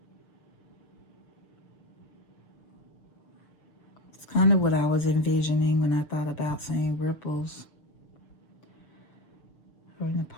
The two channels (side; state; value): right; late; 6.7 ms